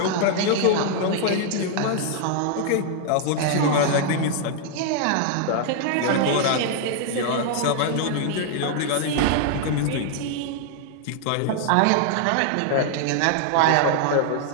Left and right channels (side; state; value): both; different; correlation 0.00